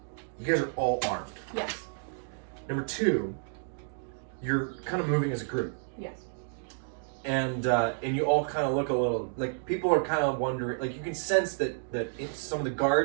you guys are all armed. Yes. Number two, you're kind of moving as a group. Yes. And you all kind of look a little like people are kind of wondering, like you can sense that some of the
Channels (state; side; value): silent; left; digital silence